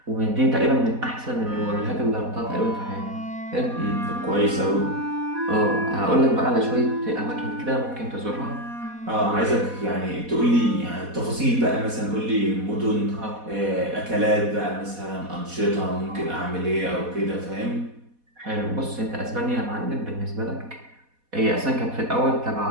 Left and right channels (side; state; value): left; late; 4.1 ms